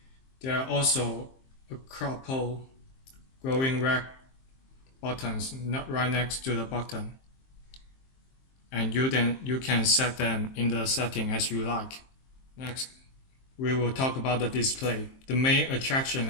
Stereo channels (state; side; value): late; right; 23 ms